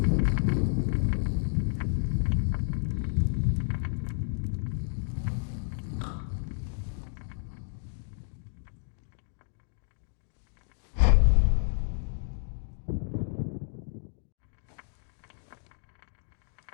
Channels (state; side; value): silent; right; digital silence